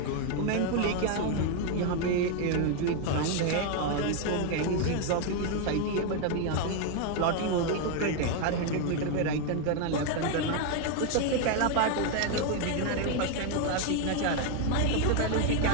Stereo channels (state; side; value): different; both; correlation 0.01